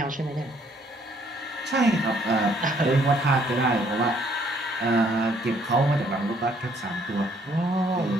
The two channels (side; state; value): both; normal; correlation 0.65